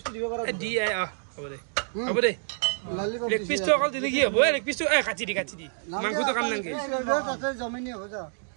দিব পারা দিয়ে হ'ব দে লেগ পিস তো অকল দিলি কি হ'ব লেগ পিস তো কাটি দি মাংস তো কাম নাংগে তাতে জমিনি হৈ যা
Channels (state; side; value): silent; left; digital silence